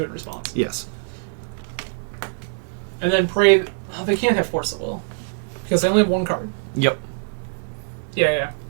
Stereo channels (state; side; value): silent; left; digital silence